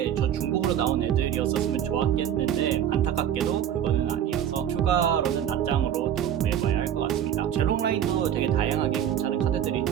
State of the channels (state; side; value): quieter; left; 10.0 dB